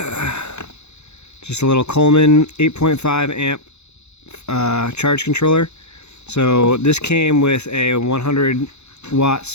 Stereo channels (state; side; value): late; right; 0.81 ms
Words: Just a little Coleman 8.5 amp charge controller. So this came with a 100 watt